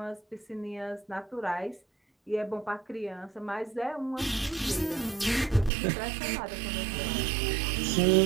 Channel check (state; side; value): drops out; left; at 5.7 s